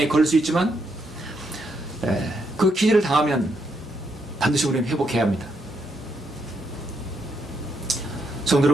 걸릴 수 있지만 그 기질을 당하면 반드시 우리는 회복해야 합니다. 성도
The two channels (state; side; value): normal; both; correlation 0.78